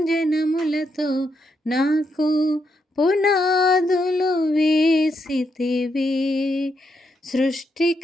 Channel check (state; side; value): normal; both; correlation 0.80